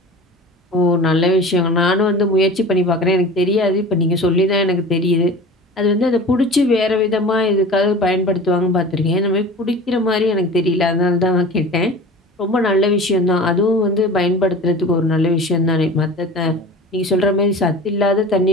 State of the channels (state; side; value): normal; both; correlation 0.38